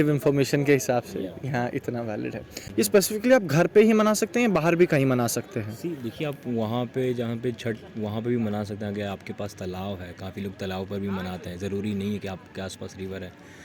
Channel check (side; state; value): both; identical; correlation 1.00